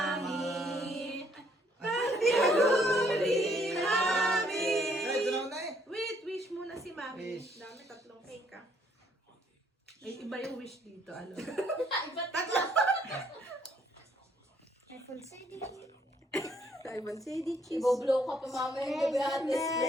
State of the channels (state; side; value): normal; both; correlation 0.67